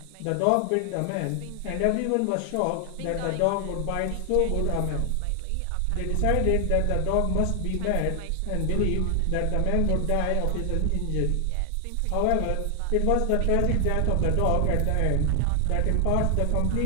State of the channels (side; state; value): both; different; correlation 0.00